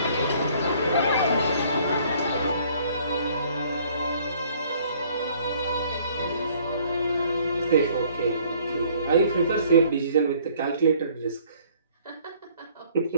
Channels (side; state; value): both; inverted; correlation -0.59